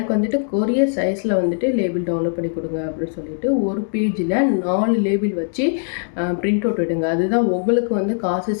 வந்துட்டு கொரியர் சைஸில் வந்துட்டு லேபிள் டவுன்லோட் பண்ணி கொடுங்க அப்படின்னு சொல்லிட்டு ஒரு பேஜில் 4 லேபிள் வச்சு பிரிண்ட் அவுட் விடுங்க. அதுதான் உங்களுக்கு வந்து காசு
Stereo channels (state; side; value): silent; right; digital silence